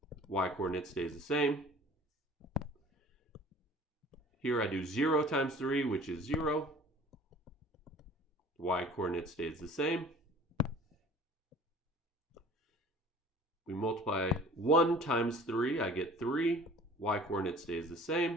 Y-coordinate stays the same. Here I do 0 times 3, which is 0. Y-coordinate stays the same. We multiply 1 times 3, I get 3. Y-coordinate stays the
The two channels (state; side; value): normal; both; correlation 0.47